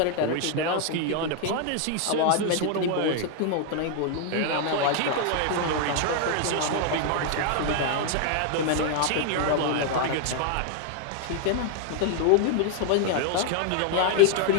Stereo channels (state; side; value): different; both; correlation 0.00